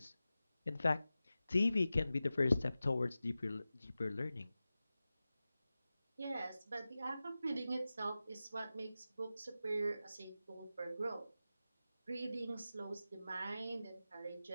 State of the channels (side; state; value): both; inverted; correlation -0.94